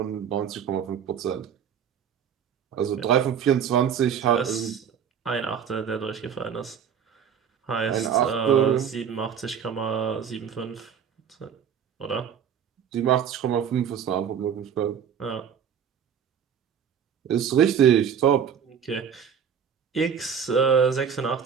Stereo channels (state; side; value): quieter; left; 7.9 dB